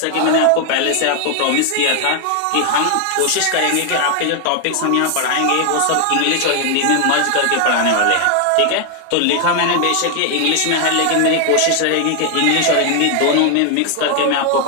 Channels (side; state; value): both; different; correlation 0.00